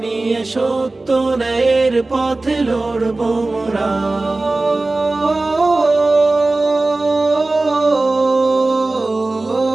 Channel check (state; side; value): quieter; left; 3.1 dB